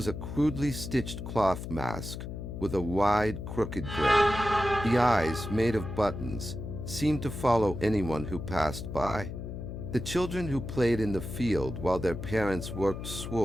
a crudely stitched cloth mask with a wide, crooked grin. The eyes, made of buttons, seemed to follow anyone who passed by. The children who played in the field while their parents worked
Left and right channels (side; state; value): left; noise; hum, 8 dB below the sound